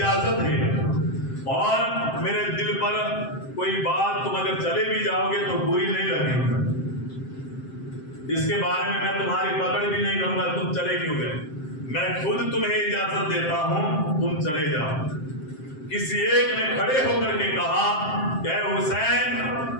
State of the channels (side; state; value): right; late; 7.6 ms